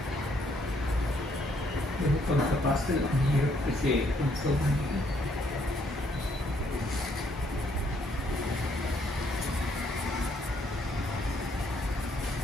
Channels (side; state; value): both; normal; correlation 0.69